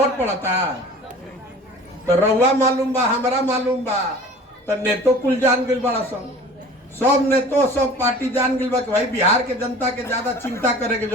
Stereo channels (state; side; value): normal; both; correlation 0.43